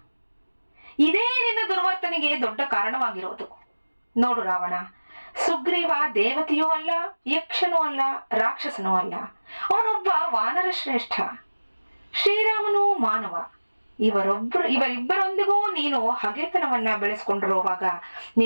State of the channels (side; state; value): both; inverted; correlation -1.00